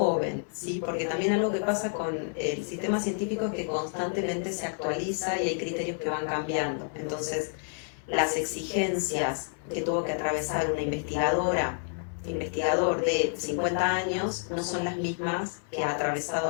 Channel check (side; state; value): right; silent; 57 dB below the other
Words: ¿sí? Porque también algo que pasa con el sistema científico es que constantemente se actualiza y hay criterios que van cambiando. Entonces, las exigencias que tuvo que atravesar una investigador de 50 años no son las mismas que ha atravesado